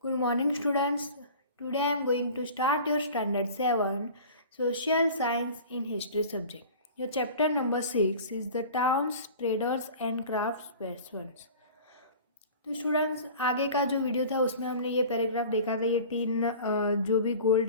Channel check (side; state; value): both; inverted; correlation -0.40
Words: Good morning, students. Today I am going to start your Standard 7 Social Science in History subject. Your chapter number 6 is the Towns, Traders and Craftspersons. तो students आगे का जो video था उसमें हमने ये paragraph देखा था, ये तीन जो भी